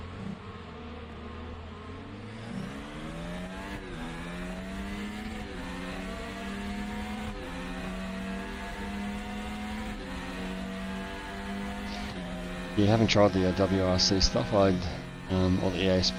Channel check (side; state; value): both; identical; correlation 1.00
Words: Yeah, haven't tried the WRC stuff. Or the EA